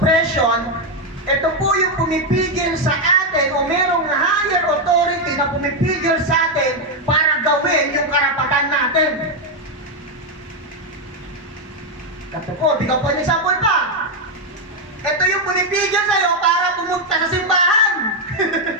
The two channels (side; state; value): both; normal; correlation 0.03